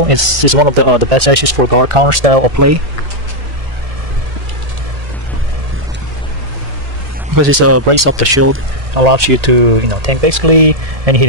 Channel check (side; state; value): left; late; 1.6 ms